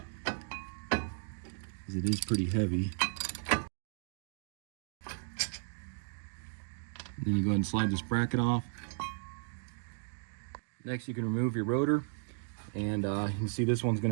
because it is pretty heavy. Then you go ahead and slide this bracket off. Next, you can remove your rotor, and you can see this one's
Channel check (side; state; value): left; silent; 54 dB below the other